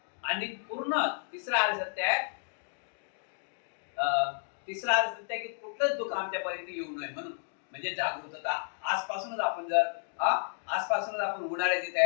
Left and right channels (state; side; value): silent; right; digital silence